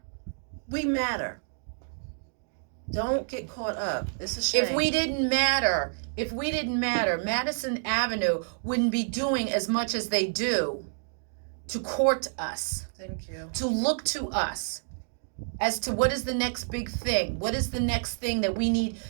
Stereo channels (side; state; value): left; silent; digital silence